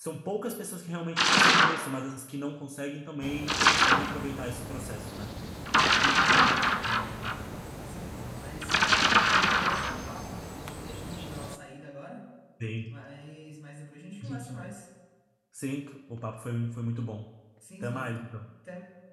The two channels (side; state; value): both; identical; correlation 1.00